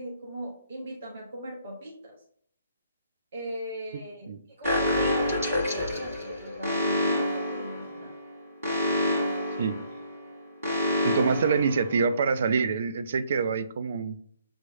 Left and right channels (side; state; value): both; inverted; correlation -0.66